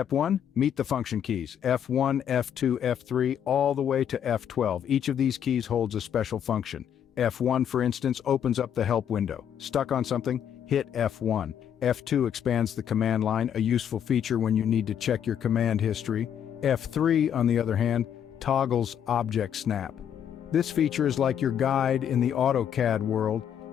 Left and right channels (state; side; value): quieter; right; 9.0 dB